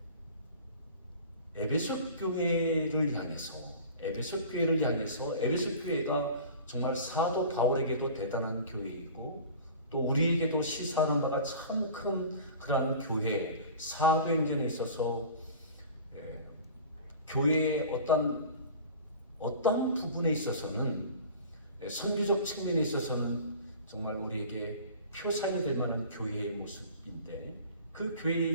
에베소 교회를 향해서 에베소 교회가 정말 사도 바울에게도 대단한 교회이고 또 우리에게도 시사하는 바가 참 큰 그러한 교회, 사도행전에 있어서 교회의 어떤 부분에 있어서는 선교적 측면에 있어서는 정말 우리에게 표상이 될 만한 교회의 모습인데 그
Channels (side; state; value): both; inverted; correlation -0.40